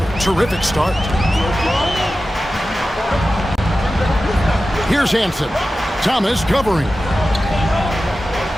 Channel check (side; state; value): both; normal; correlation 0.94